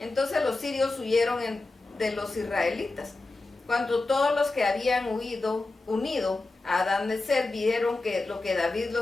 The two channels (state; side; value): quieter; right; 3.2 dB